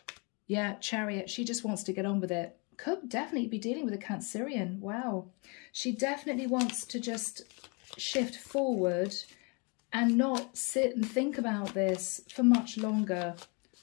Yeah, Chariot. She just wants to get on with it. Could definitely be dealing with a Cancerian. Wow. She definitely wants to just shift forward and not sit and think about this for much longer.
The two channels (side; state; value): right; quieter; 32.4 dB